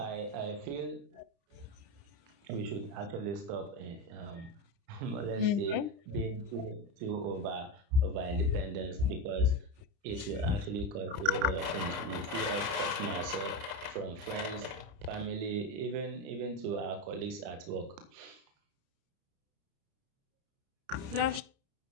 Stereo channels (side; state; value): left; late; 30 ms